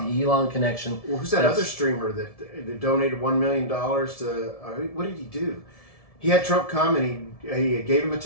the Elon connection. Well, who's that other streamer that donated $1 million to? What did he do? He had Trump come and he gave him a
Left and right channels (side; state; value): right; late; 1.7 ms